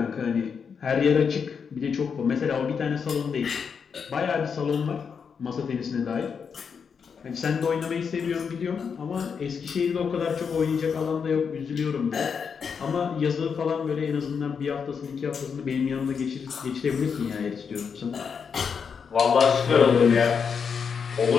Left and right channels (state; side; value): quieter; right; 6.3 dB